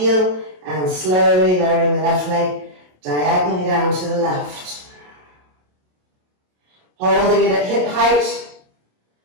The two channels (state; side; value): late; left; 27 ms